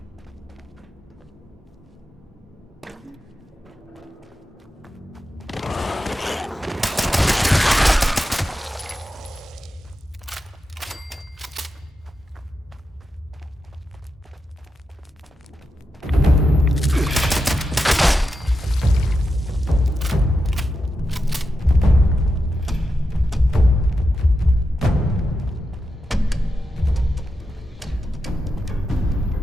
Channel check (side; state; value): both; normal; correlation 0.88